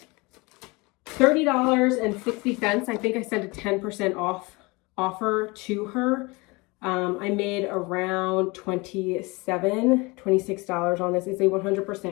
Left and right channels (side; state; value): right; quieter; 25.5 dB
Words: $30.60. I think I sent a 10% off offer to her. I made around $26 on this. It's a